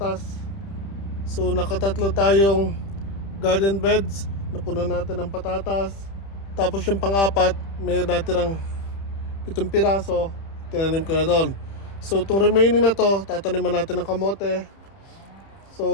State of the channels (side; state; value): right; late; 30 ms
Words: So nakatatlo tayong garden beds, napunan natin ng patatas. Tapos yung pang-apat, may natirang 7 piraso, tinanim ko na doon. So itong remaining na to, tataniman natin ng kamote.